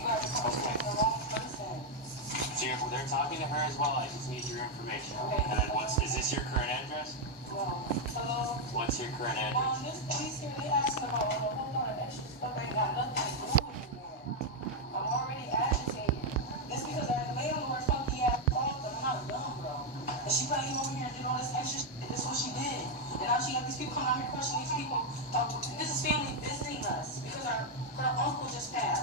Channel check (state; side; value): normal; both; correlation 0.02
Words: guys are talking to the wrong person. So they're talking to her as well. I just need your information. Okay. And then is this your current address? No. Hello? What's your current address? This police here, they asking about a whole lot of extra stuff ain't got nothing to do with me. I'm already agitated. Just because our landlord funky ass called them, I'm not dumb, bro. And she came over here and did all this extra shit. This is what she did. And now she got these people coming out here questioning these people. This is family visiting us because her uncle just